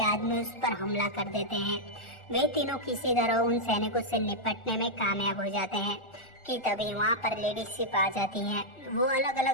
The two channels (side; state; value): right; late; 1.4 ms